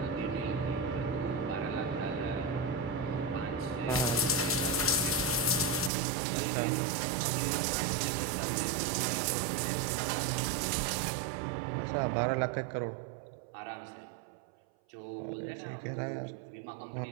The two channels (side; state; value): left; drops out; at 5.9 s